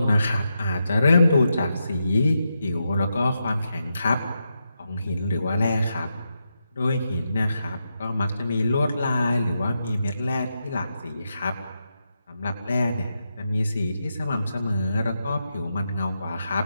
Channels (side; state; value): both; inverted; correlation -0.85